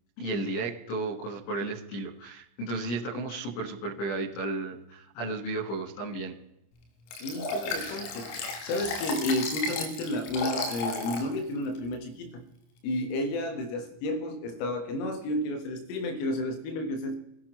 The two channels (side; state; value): right; late; 25 ms